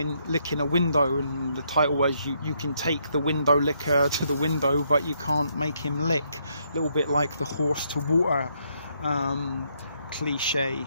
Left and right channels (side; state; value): both; inverted; correlation -0.74